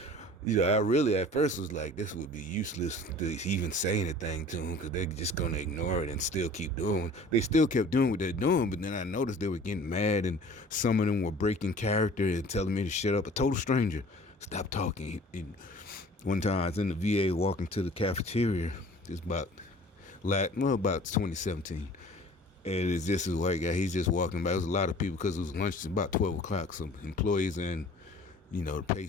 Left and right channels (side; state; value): both; normal; correlation 0.47